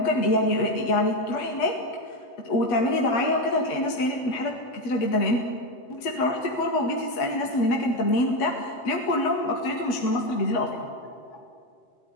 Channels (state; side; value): late; right; 8.3 ms